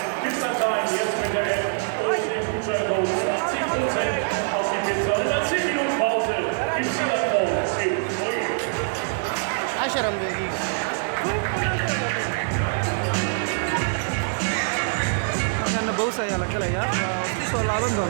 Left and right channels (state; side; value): silent; left; digital silence